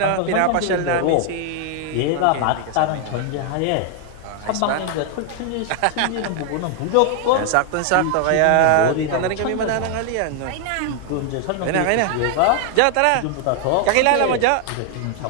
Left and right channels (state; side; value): different; both; correlation 0.00